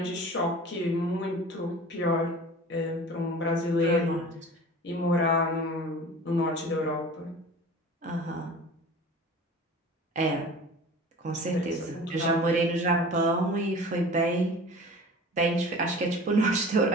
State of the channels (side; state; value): both; normal; correlation 0.40